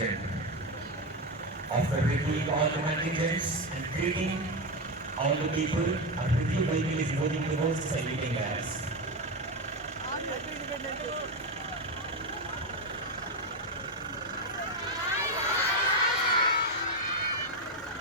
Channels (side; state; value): both; normal; correlation 0.11